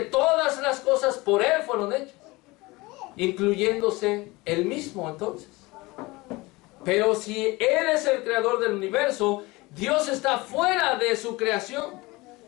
las cosas por Él fueron hechas, incluyéndose Él mismo entonces. Pero si Él es el creador del universo, Dios está fuera de su creación.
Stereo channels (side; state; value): right; quieter; 22.4 dB